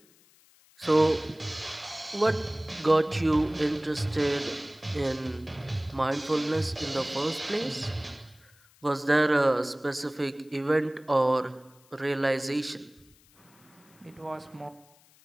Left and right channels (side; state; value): left; noise; hiss, 29 dB below the sound